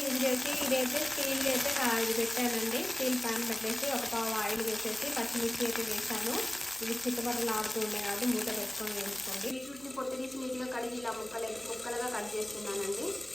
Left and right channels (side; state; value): right; noise; hum, 22 dB below the sound